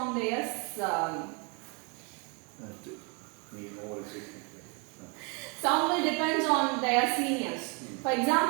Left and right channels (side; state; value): left; quieter; 33.4 dB